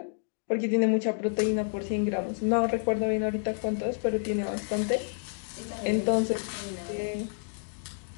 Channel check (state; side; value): silent; right; digital silence